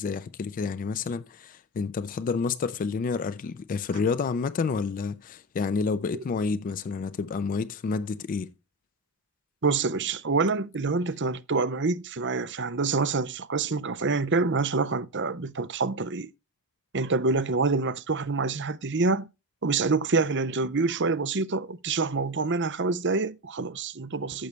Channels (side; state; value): both; normal; correlation 0.17